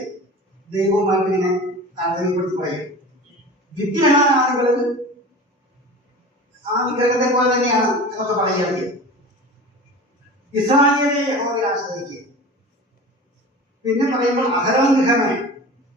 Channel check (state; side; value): normal; both; correlation 0.36